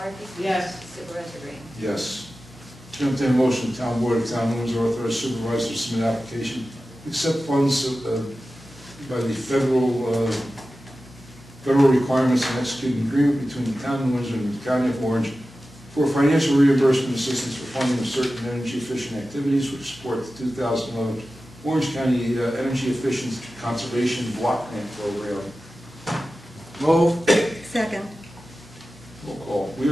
Yes. Supervisor Green? Yes. Chair will entertain a motion, the town board of the town of Windsor authorize supervisor to submit application, accept funds by the federal requirements and execute an agreement between the town of Windsor and the county of Orange for financial reimbursement assistance for funding of certain energy efficient activities which support the 2011 Orange County Energy Efficient Conservation Block Grant Program. Move. Second. Roll call. We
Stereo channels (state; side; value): normal; both; correlation 0.94